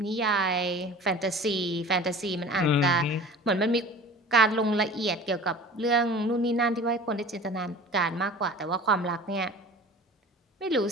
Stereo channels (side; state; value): both; normal; correlation 0.41